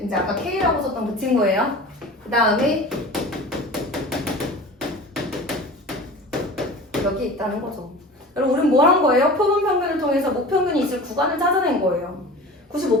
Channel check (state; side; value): normal; both; correlation 0.37